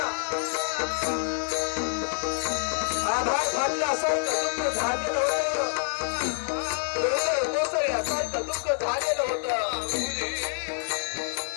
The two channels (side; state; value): right; silent; digital silence